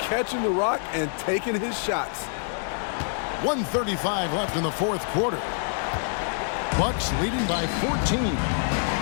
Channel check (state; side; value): silent; right; 61 dB below the other